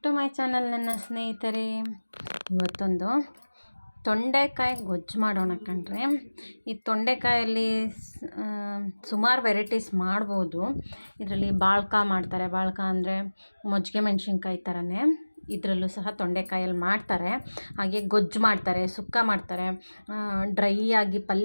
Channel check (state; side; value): inverted; both; correlation -1.00